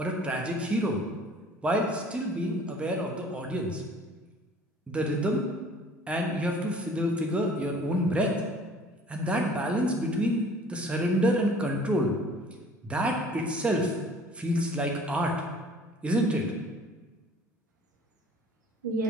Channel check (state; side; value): normal; both; correlation 0.51